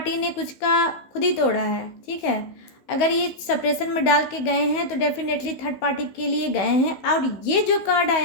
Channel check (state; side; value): late; right; 16 ms